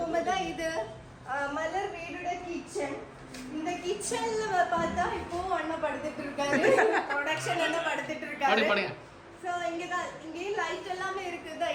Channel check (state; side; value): identical; both; correlation 1.00